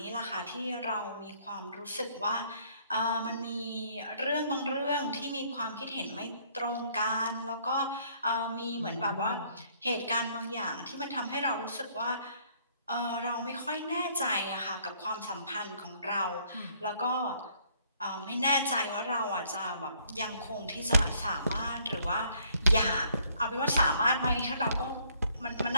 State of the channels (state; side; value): inverted; both; correlation -0.64